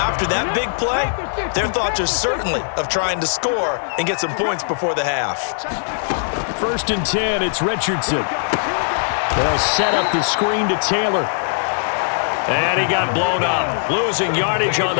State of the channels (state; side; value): silent; right; digital silence